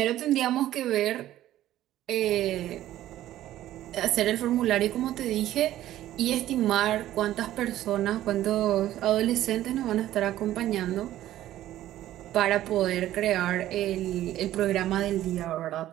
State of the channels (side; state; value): left; quieter; 13.6 dB